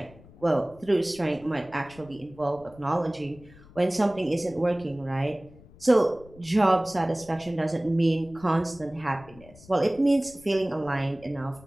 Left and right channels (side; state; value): left; noise; rumble, 23 dB below the sound